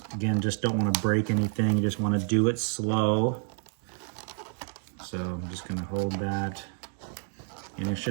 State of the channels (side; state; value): left; silent; 55 dB below the other